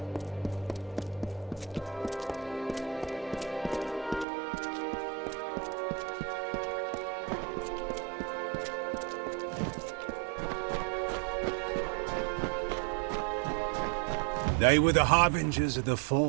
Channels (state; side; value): drops out; left; at 4.2 s